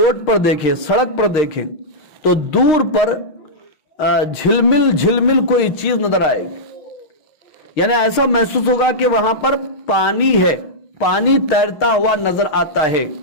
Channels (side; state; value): right; late; 5.9 ms